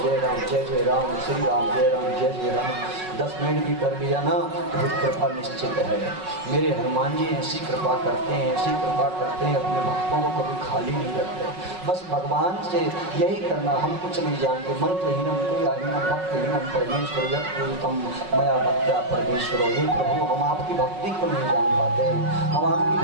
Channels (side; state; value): left; late; 5.4 ms